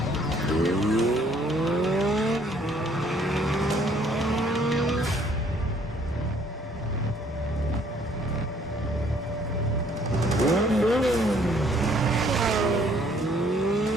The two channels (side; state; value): both; normal; correlation 0.62